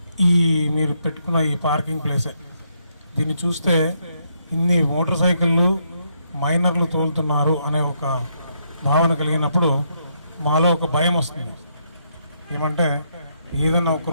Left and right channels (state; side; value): inverted; both; correlation -0.76